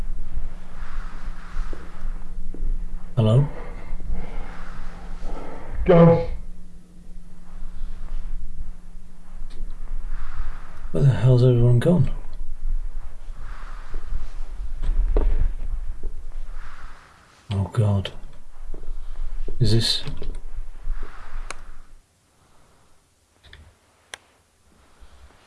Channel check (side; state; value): both; identical; correlation 1.00